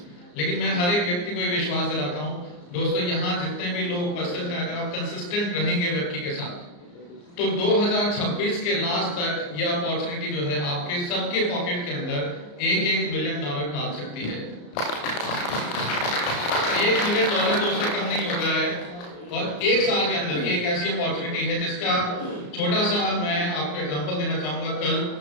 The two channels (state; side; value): late; right; 34 ms